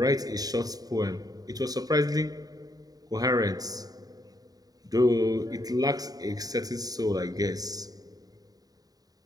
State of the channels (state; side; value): late; left; 0.18 ms